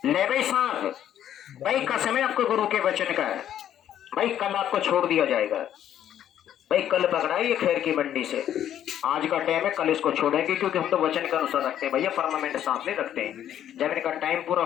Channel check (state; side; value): quieter; right; 10.7 dB